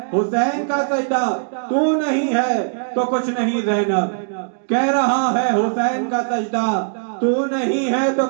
हुसैन का सजदा, तू नहीं है तो कुछ नहीं ज़ैनब। कह रहा है हुसैन का सजदा, तू नहीं है तो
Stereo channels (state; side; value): silent; left; digital silence